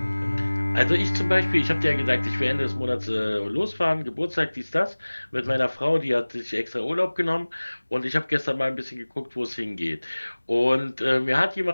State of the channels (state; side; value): inverted; both; correlation -1.00